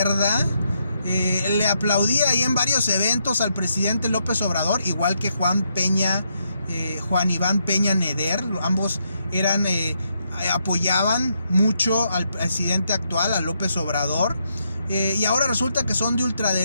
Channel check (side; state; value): both; inverted; correlation -0.78